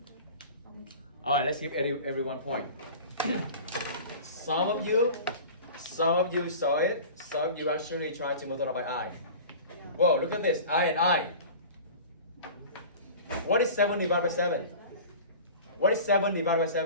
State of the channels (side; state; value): both; inverted; correlation -0.38